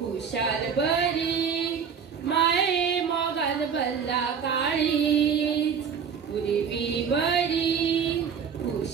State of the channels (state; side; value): quieter; left; 6.9 dB